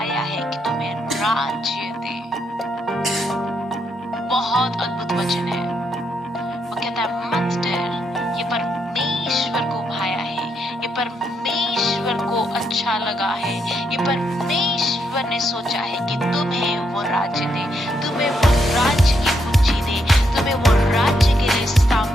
है कि तुम्हें राज्य दे। बहुत अद्भुत वचन है। वो कहता है मत डर, ये परमेश्वर को भाया है, ये परमेश्वर को अच्छा लगा है, ये परमेश्वर ने सोचा है कि तुम्हें वो राज्य दे, तुम्हें वो राज्य की कुंजी दे, तुम्हें वो राज्य के लिए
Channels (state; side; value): normal; both; correlation 0.78